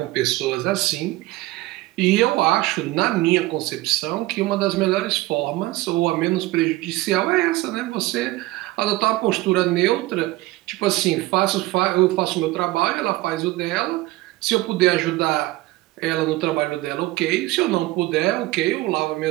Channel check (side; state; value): left; quieter; 18.7 dB